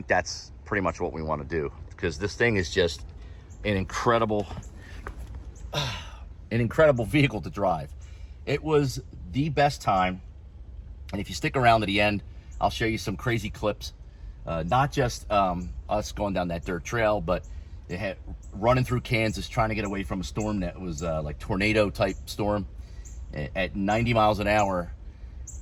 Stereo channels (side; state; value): both; identical; correlation 1.00